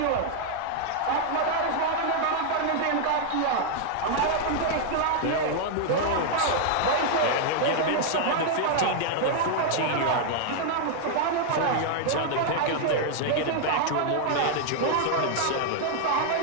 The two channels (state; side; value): different; both; correlation 0.00